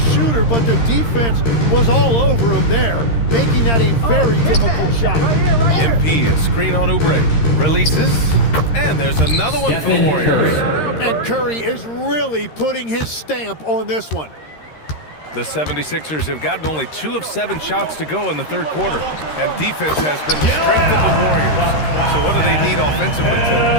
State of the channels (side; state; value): right; late; 13 ms